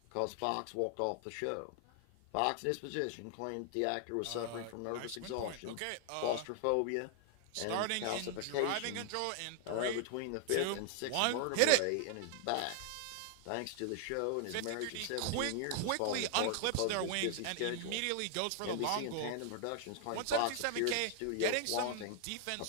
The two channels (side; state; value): both; different; correlation 0.00